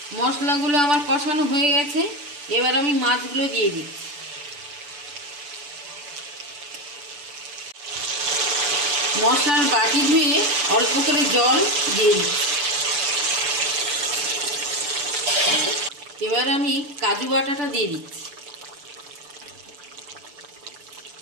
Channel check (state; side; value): late; left; 6.9 ms